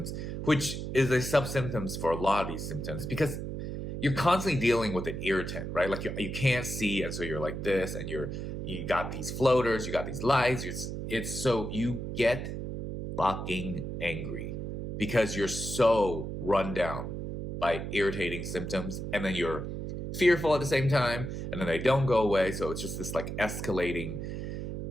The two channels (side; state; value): right; noise; hum, 5 dB below the sound